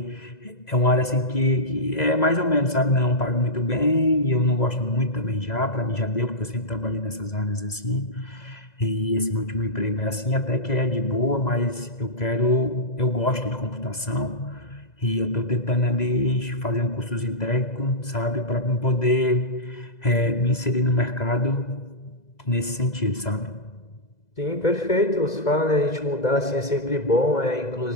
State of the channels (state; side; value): late; right; 2.0 ms